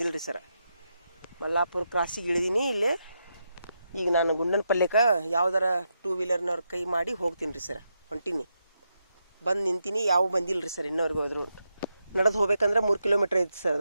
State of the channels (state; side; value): inverted; both; correlation -0.84